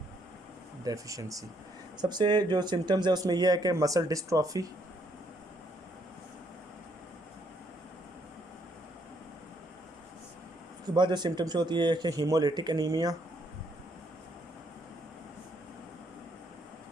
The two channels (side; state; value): both; normal; correlation 0.71